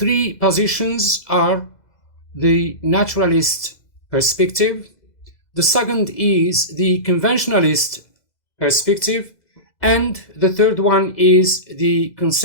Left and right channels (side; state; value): right; late; 2.0 ms